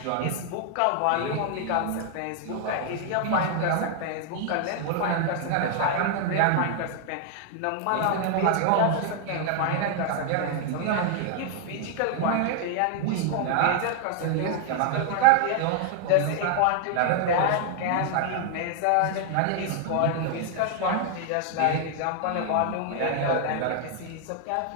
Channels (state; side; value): different; both; correlation 0.00